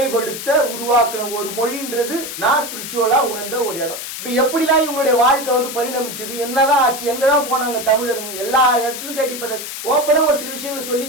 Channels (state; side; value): noise; left; hiss, 8 dB below the sound